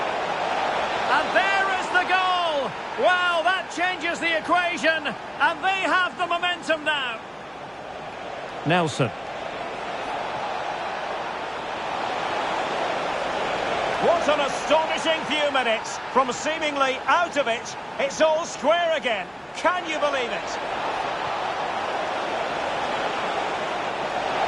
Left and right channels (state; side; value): identical; both; correlation 1.00